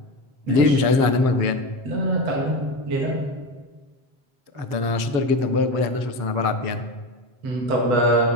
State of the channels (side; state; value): left; late; 7.6 ms